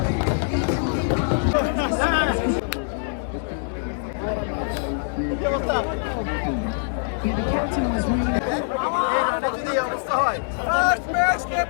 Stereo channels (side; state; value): right; silent; digital silence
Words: এই রানে যদি এই অবস্থা হয় ফার্স্ট ম্যাচ কে